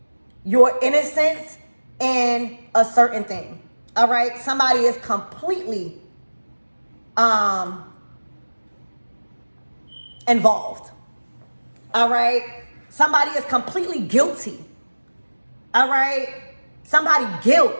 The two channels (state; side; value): inverted; both; correlation -1.00